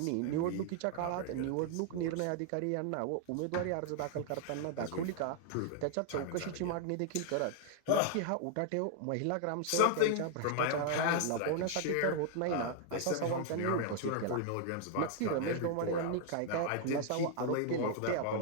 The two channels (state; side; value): different; both; correlation 0.00